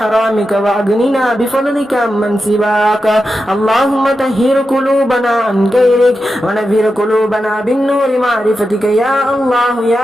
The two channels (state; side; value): normal; both; correlation 0.89